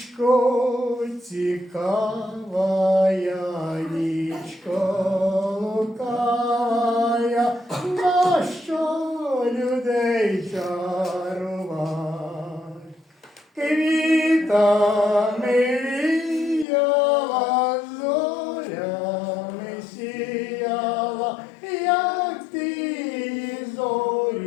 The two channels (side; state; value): right; drops out; at 16.7 s